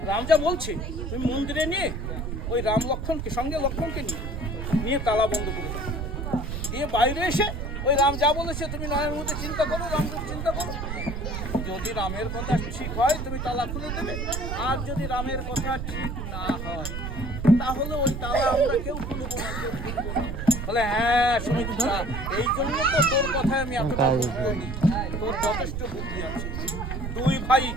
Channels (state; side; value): noise; right; rumble, 4 dB below the sound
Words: রাম যা বলছে তুমি মন্দিরে নিয়ে ওই রাম লক্ষ্মণকে সঙ্গে লক্ষ্মণকে নিয়ে তালা বন্ধ করে দাও, দিয়ে বাইরে এসে ওই রাম যা বলেছে তুমি নয়ের মধ্যে চিন্তা করো, রামকে চিন্তা করো। যদি রামের কথা ঠিক হয় তুমি তালা খুলে দেবে, আর যদি রামের কথা ঠিক না হয় তাহলে ওই তালা আমরা কেউ খুলব না। বলে হ্যাঁ সুমিত্রা, এই জন্য তো তোর কথায় আমি এতটা বলি, তোর যথেষ্ট বুদ্ধি আছে। দুই